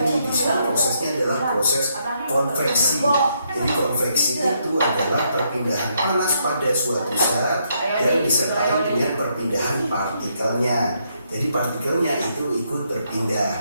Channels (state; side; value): inverted; both; correlation -0.75